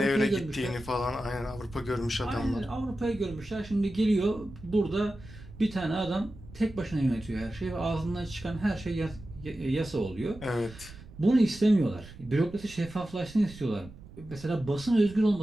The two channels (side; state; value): right; noise; rumble, 17 dB below the sound